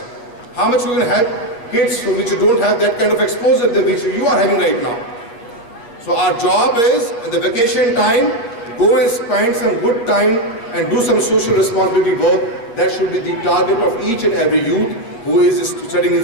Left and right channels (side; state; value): right; late; 8.5 ms